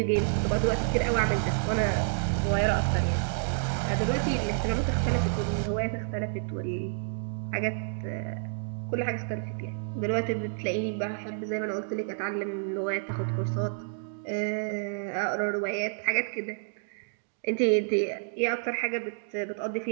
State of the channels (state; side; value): silent; left; digital silence